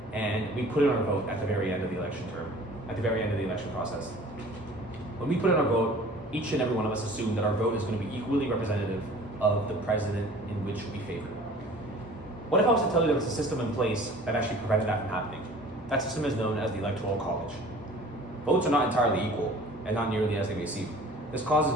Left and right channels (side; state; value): both; normal; correlation 0.47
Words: and we put in our vote at the very end of the election term, at the very end of the election process. When we put in our vote, each and every one of us assume that our vote is going to be equally representative of the president in which we favor. What if I was to tell you there was a system in place that actually prevented that from happening? That system is known as the Electoral College. Votes are not entirely equal, and not nearly as they may seem. This causes